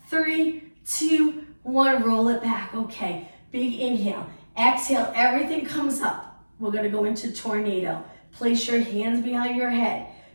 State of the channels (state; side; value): inverted; both; correlation -1.00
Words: 3, 2, 1, roll it back. Okay, big inhale, exhale, everything comes up. We're gonna go into tornado. Place your hands behind your head.